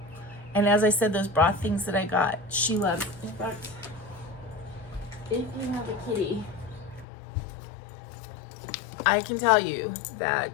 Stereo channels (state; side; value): drops out; right; at 7.1 s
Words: as I said, those broth things that I got, she loves. In fact, if you have a kitty, I can tell you